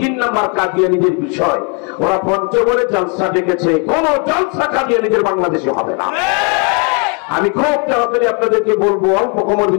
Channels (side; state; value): right; quieter; 36.3 dB